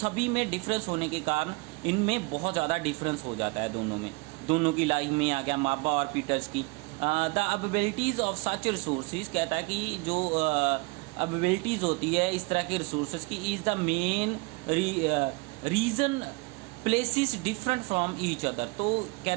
में डिफरेंस होने के कारण इनमें बहुत ज़्यादा डिफरेंस हो जाता है दोनों में। दोनों की लाइफ में आ गया माबा और पीटर्स की। द अवेबिलिटीज़ ऑफ सच रिसोर्सेज, कहता है कि जो अवेबिलिटीज़ होती है इस तरह के रिसोर्सेज की, is the main reason places different from each other. तो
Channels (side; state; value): left; quieter; 26.5 dB